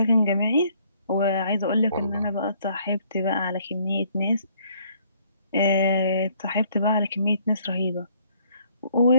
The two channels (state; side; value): inverted; both; correlation -0.63